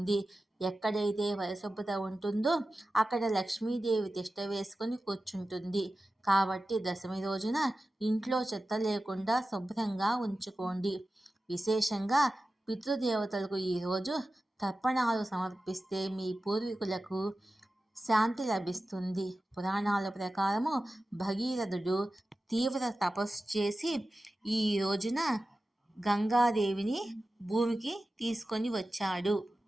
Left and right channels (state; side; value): normal; both; correlation 0.94